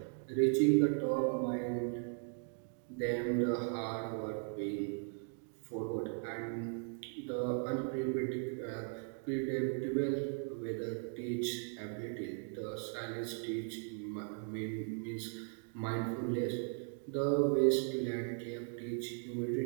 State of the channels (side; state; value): left; silent; 53 dB below the other